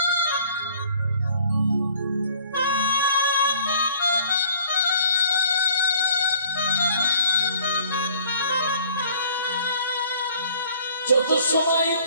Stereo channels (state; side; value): inverted; both; correlation -0.54